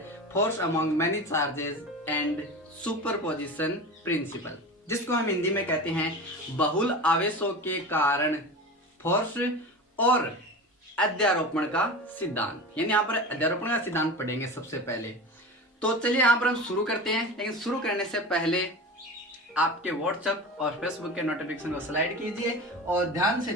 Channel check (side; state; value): both; normal; correlation 0.30